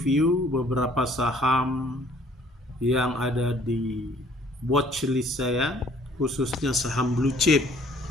beberapa saham yang ada di watchlist saya, khususnya saham blue chip.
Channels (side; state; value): both; normal; correlation 0.59